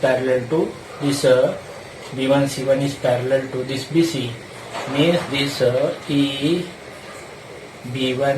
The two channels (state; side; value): identical; both; correlation 1.00